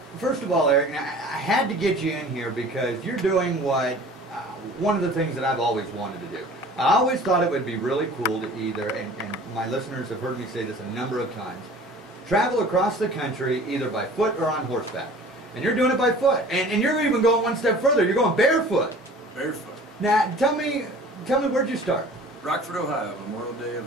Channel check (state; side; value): normal; both; correlation 0.45